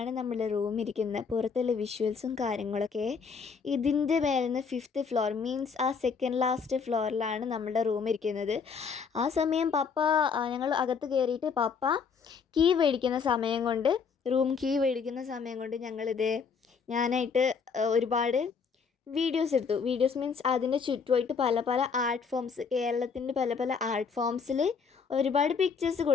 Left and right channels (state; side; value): quieter; right; 5.8 dB